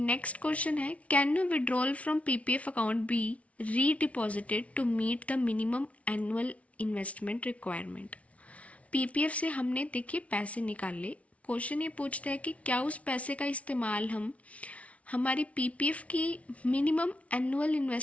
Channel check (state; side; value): late; right; 0.065 ms